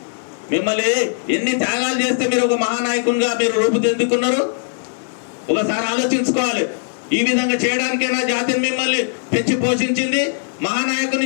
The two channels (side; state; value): right; silent; digital silence